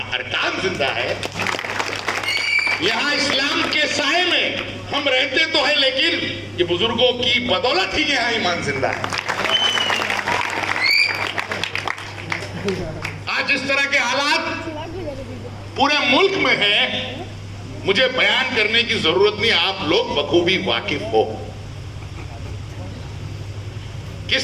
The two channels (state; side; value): identical; both; correlation 1.00